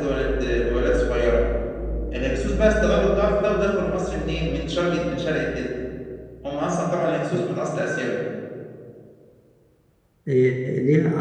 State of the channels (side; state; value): both; identical; correlation 1.00